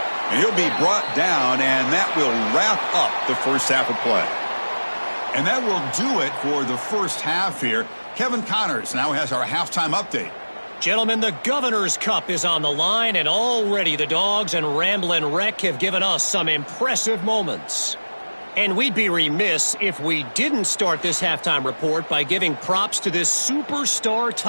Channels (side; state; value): both; inverted; correlation -1.00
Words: And he'll be brought down, and that will wrap up the first half of play. And that will do it for the first half here. Kevin Connors now has our halftime update. Gentlemen, the Governor's Cup is on the line, and already the Dogs and Ramblin' Wreck have given us some impressive moments. And we'd be remiss if we didn't start this halftime report by giving props to this superstar